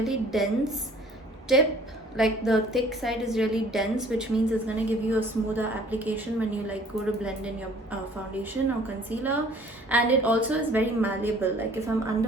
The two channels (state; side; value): normal; both; correlation 0.54